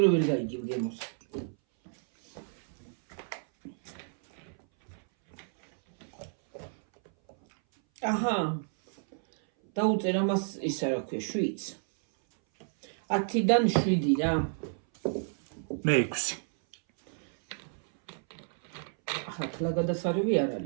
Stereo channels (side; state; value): left; silent; 57 dB below the other